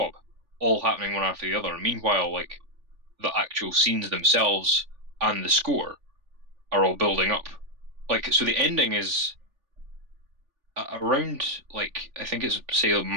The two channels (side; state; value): left; late; 3.4 ms